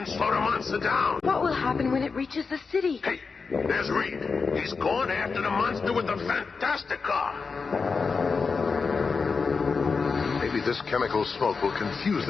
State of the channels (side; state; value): right; quieter; 4.8 dB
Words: slow the monster down. What will happen when it reaches the city? Hey, there's Reed. He's going after the monster with the Fantastic Car. Maybe This chemical smoke will confuse